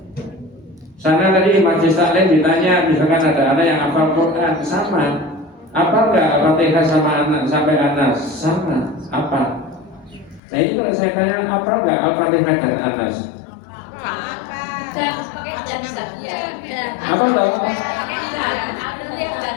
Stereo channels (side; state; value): right; drops out; at 10.4 s